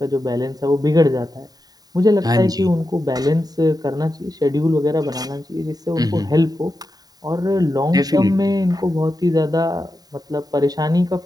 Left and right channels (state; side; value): late; left; 0.18 ms